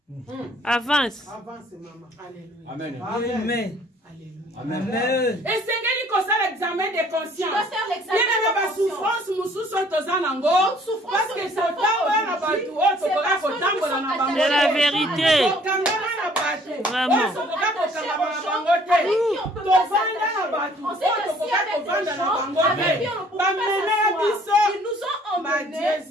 Avance. Avance, maman. Alléluia. Amen. Amen. Alléluia. Amen. Et c'est qu'il faut faire l'examen de conscience. Tu dois faire l'examen de conscience. Souffrance, parce que c'est la vérité. Vraiment. Ils nous ont emmenés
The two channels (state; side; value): normal; both; correlation 0.58